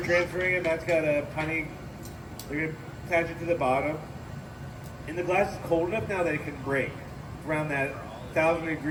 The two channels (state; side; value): identical; both; correlation 1.00